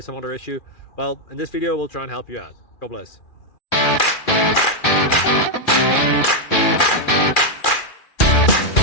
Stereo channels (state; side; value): late; right; 2.4 ms